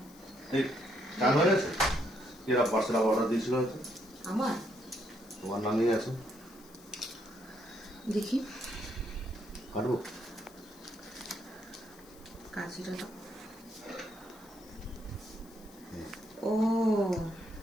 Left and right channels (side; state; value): left; noise; hiss, 23 dB below the sound